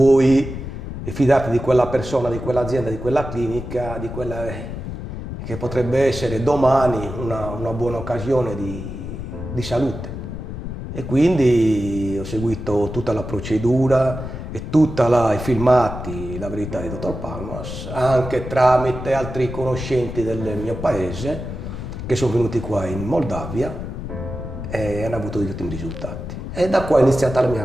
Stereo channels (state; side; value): noise; left; rumble, 8 dB below the sound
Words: fidarti di quella persona, di quell'azienda, di quella clinica, di quella che potrebbe essere domani una buona occasione di salute. E quindi ho seguito tutta la procedura e tutti i filmati, la verità di dottor Palmas, anche tramite altri conoscenti del mio paese che sono venuti qua in Moldavia e hanno avuto degli ottimi risultati. E da qua è iniziata la mia